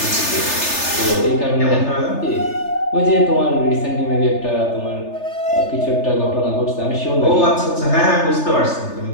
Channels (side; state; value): right; late; 3.3 ms